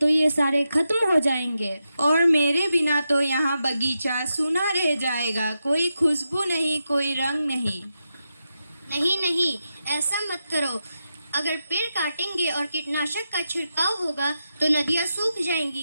ये सारे खत्म हो जाएंगे। और मेरे बिना तो यहाँ बगीचा सूना रह जाएगा। कोई खुशबू नहीं, कोई रंग नहीं। नहीं नहीं, ऐसा मत करो। अगर पेड़ काटेंगे और कीटनाशक का छिड़काव होगा तो नदियाँ सूख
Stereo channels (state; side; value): inverted; both; correlation -0.87